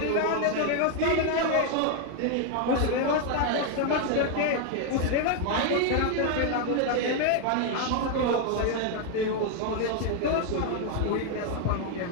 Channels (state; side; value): different; both; correlation 0.01